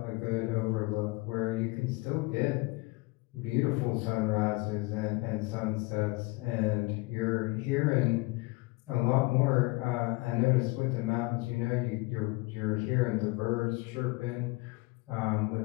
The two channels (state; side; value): quieter; right; 24.5 dB